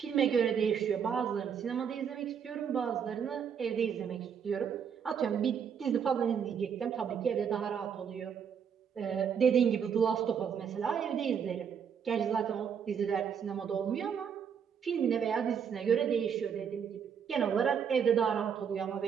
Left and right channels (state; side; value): quieter; left; 7.4 dB